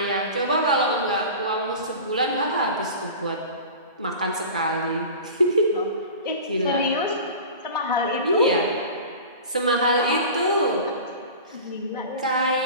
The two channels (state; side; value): inverted; both; correlation -0.35